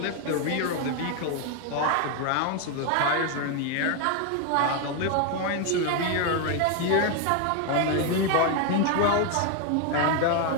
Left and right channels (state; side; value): different; both; correlation 0.01